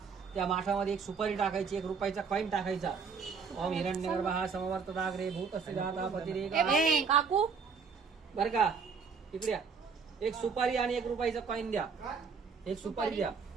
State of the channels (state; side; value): quieter; left; 5.6 dB